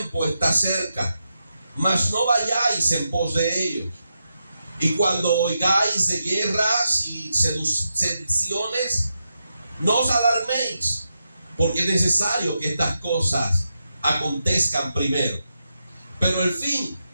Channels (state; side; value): inverted; both; correlation -0.86